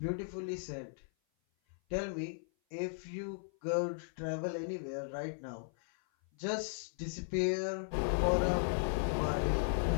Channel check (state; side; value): silent; right; 54 dB below the other